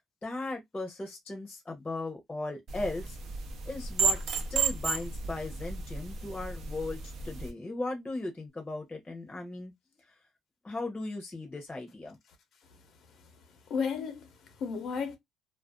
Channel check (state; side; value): normal; both; correlation 0.71